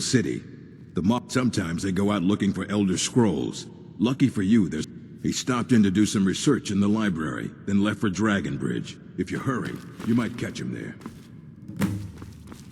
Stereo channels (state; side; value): identical; both; correlation 1.00